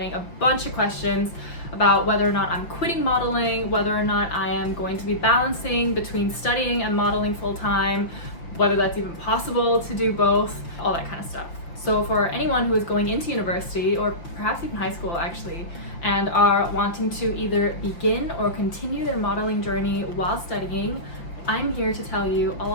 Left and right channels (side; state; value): right; late; 5.8 ms